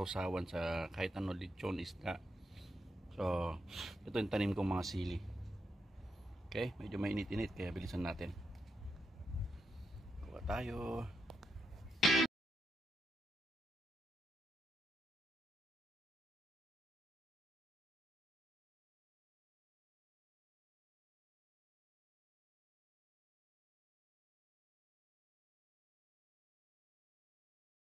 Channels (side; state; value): both; normal; correlation 0.83